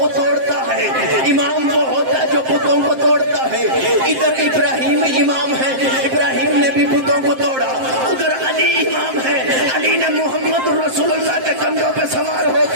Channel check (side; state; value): left; late; 7.6 ms